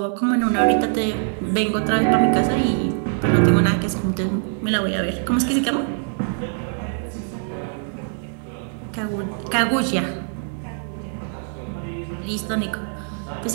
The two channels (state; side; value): silent; left; 57 dB below the other